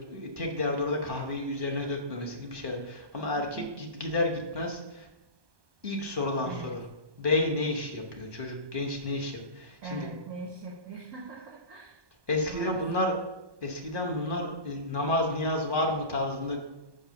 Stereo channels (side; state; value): left; late; 1.2 ms